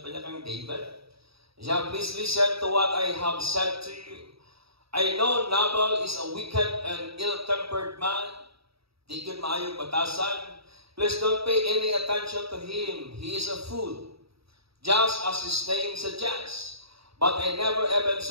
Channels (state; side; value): late; left; 0.77 ms